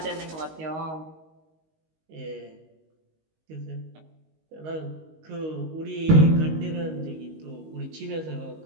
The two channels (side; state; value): left; late; 19 ms